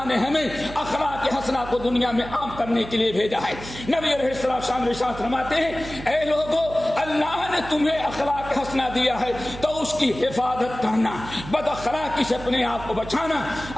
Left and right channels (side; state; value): right; noise; hum, 13 dB below the sound